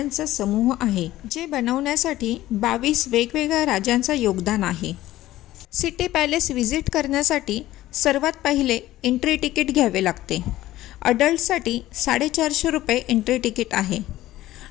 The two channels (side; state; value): right; quieter; 15.3 dB